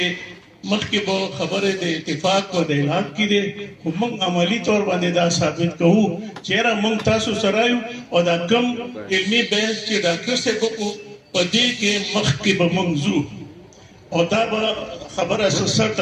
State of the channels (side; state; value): both; identical; correlation 1.00